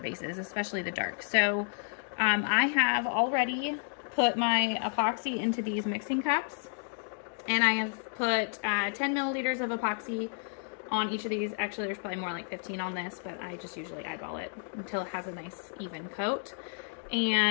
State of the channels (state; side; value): silent; right; 57 dB below the other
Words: especially the dark. So I have already put my epoxy into these mixing cups, and I have put 10 milliliters of epoxy on each of these. Actually, there's probably more like 15 on this, but I just usually eyeball it until it has a nice even coat.